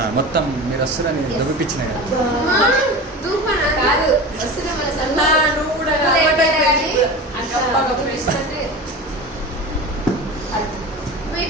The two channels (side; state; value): both; normal; correlation 0.30